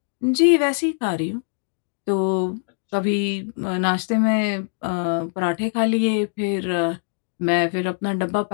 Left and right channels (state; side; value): silent; right; digital silence